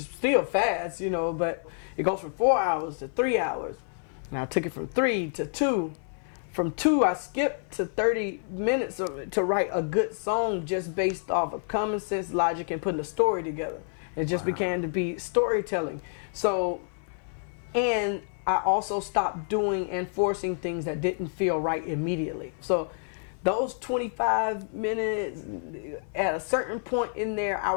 still fast, you know, but it goes from 4 hours to 3 hours. Now I took it from 3 to 2. From 2, I skipped to 30 minutes to write a good song just based off of common sense, logic, and putting a story together. It just began to be storytelling. So, and I also stopped doing and forcing things that didn't feel right immediately. So those 25 minutes, at a certain point in there, I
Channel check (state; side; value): silent; right; 55 dB below the other